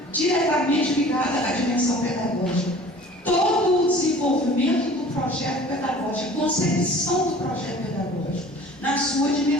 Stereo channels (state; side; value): normal; both; correlation 0.46